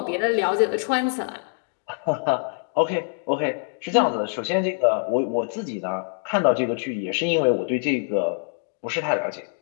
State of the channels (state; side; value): silent; right; 62 dB below the other